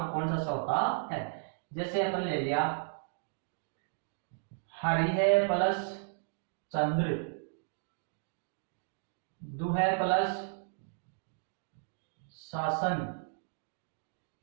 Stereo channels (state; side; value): silent; left; digital silence